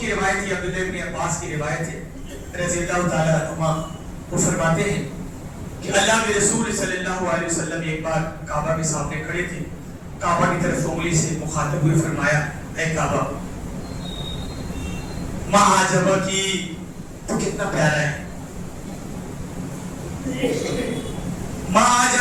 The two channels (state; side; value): identical; both; correlation 1.00